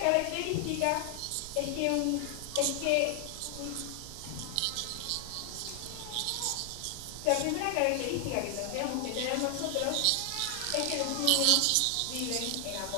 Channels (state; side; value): different; both; correlation 0.00